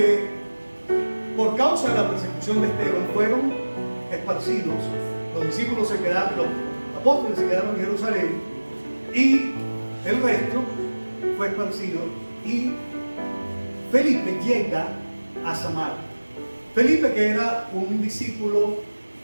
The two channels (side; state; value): both; inverted; correlation -1.00